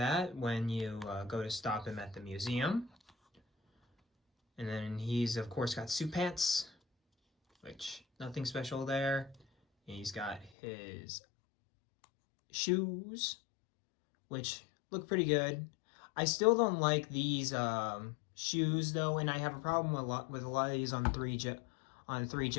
when you go to stop him at the museum. And then he's, of course, got suit pants, which nothing special there. And he's got his shoes, which look pretty good. I still don't like these shoes, though, and I have a problem with a lot of these on three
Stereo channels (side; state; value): right; drops out; at 10.5 s